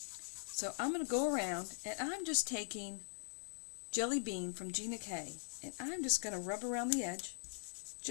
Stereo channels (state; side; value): silent; right; digital silence